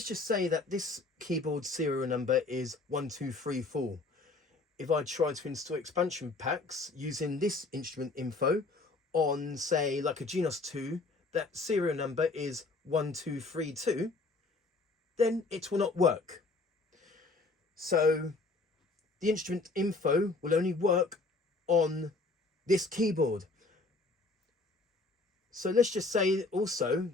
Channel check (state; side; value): quieter; right; 3.5 dB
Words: just say that this keyboard serial number is 1234. If I try to install expansion packs using this instrument info on, say, like a Genos 2, that serial number is 1232, then it will not work. So the instrument info will only work on this keyboard. So let's just say also